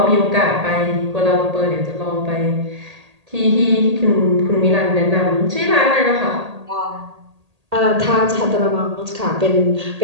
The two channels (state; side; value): late; left; 1.8 ms